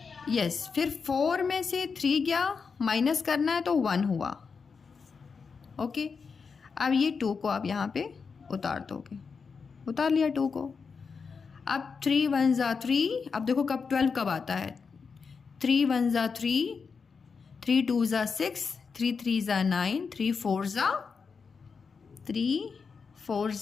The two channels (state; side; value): quieter; right; 5.4 dB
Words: यस। फिर 4 में से 3 गया, माइनस करना है तो 1 हुआ। ओके। अब ये 2 को आप यहाँ पे उतार दोगे, उतार लिया 2 को। अब 3 1 जा 3, अब देखो कब 12 कब आता है, 3 1 जा 3, 3 2 जा 6, 3 3 जा 9, 3 4 जा